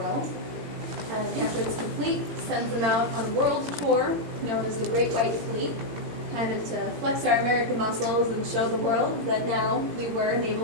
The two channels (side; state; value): left; late; 17 ms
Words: world. And after it's complete, sends them out on a world tour known as the Great White Fleet, kind of to flex our American muscles and show the world that now we were a